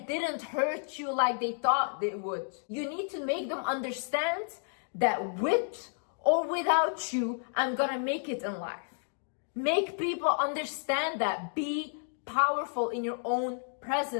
didn't hurt you like they thought it would. You need to make them understand that with or without you, I'm gonna make it in life. Make people understand that. Be powerful in your own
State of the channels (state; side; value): silent; right; digital silence